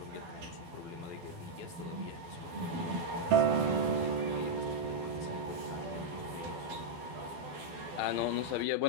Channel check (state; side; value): late; left; 12 ms